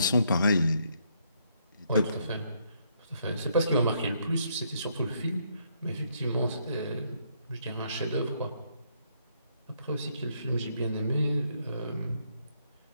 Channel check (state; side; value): inverted; both; correlation -0.72